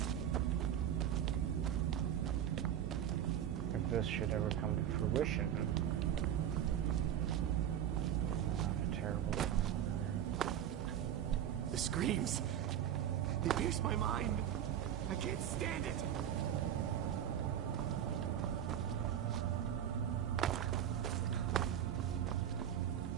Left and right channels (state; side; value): quieter; left; 10.1 dB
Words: take. If this should ever come to fruition. What a terrible time. The screams. They pierce my mind. I can't stand it.